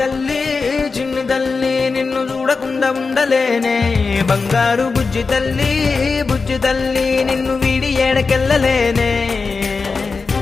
నిన్ను చూడకుండా ఉండలేనే బంగారు బుజ్జి తల్లి నిన్ను వీడి ఏడకెళ్ళలేనే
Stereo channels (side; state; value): right; quieter; 4.5 dB